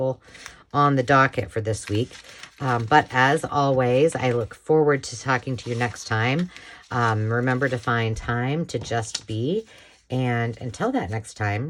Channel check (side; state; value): both; identical; correlation 1.00